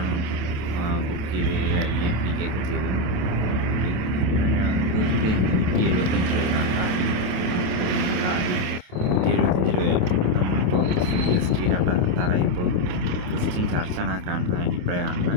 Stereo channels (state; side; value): late; left; 28 ms